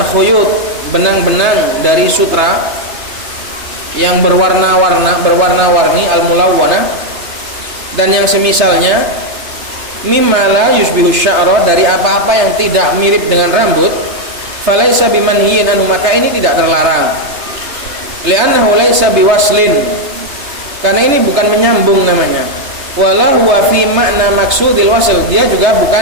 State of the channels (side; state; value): left; late; 3.3 ms